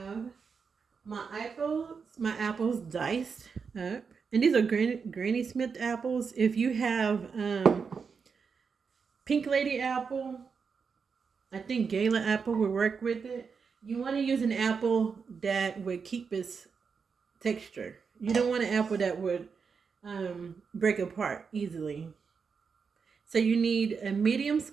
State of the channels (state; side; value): quieter; left; 5.7 dB